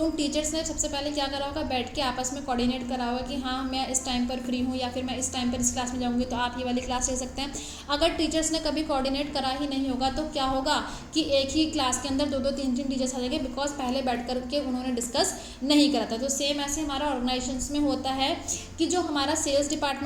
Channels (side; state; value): both; identical; correlation 1.00